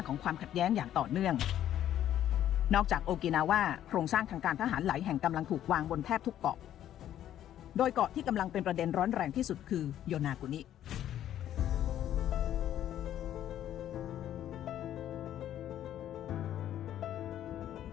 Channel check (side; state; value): right; quieter; 11.4 dB